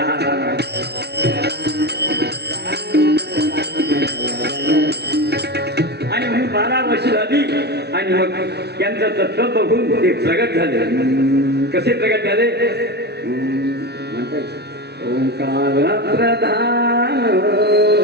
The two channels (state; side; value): late; left; 0.49 ms